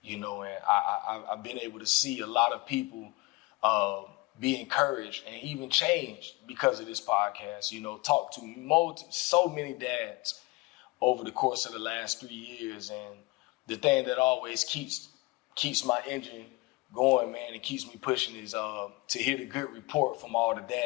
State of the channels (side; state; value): right; quieter; 23.8 dB